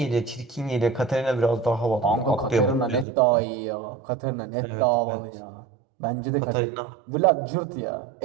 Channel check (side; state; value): left; drops out; at 3.1 s